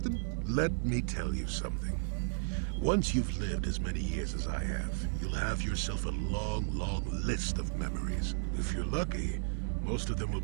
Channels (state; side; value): silent; left; digital silence